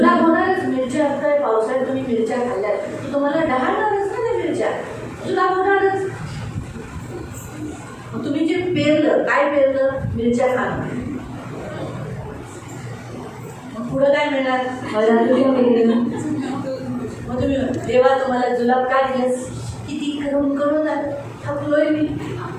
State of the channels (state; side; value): identical; both; correlation 1.00